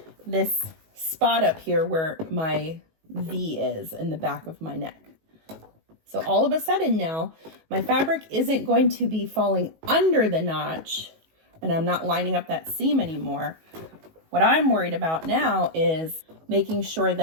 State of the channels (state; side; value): late; left; 19 ms